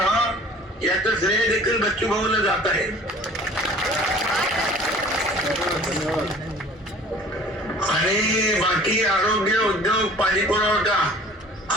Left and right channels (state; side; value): normal; both; correlation 0.48